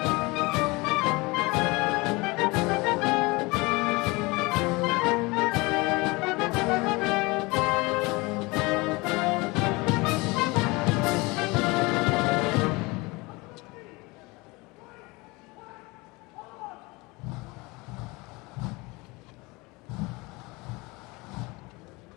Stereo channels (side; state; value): right; quieter; 24.6 dB